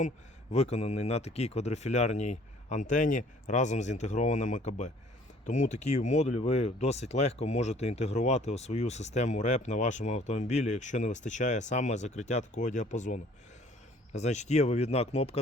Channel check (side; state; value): both; normal; correlation 0.55